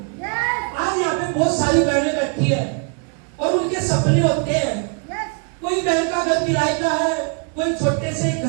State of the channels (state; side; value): quieter; left; 38.1 dB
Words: आज यहाँ पे बहुत सारी बहनें बैठी है और उनके सपने होते हैं। कोई बहन का घर किराए का है, कोई छोटे से